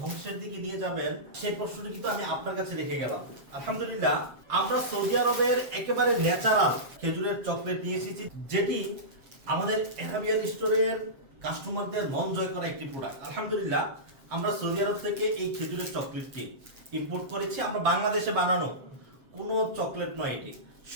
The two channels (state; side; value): late; left; 7.4 ms